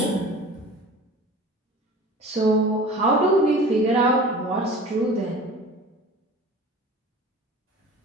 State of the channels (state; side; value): normal; both; correlation 0.40